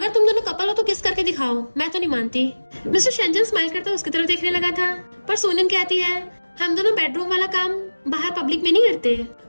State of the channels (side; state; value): both; inverted; correlation -1.00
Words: तुम दोनों कपल हो तो किस करके दिखाओ, मैं तो नहीं मानती। मिस्टर शेंजन स्माइल करता उसकी तरफ देखने लगा था, पर सोनियन कहती है हम दोनों बेडरूम वाला काम बाहर पब्लिक में नहीं करते।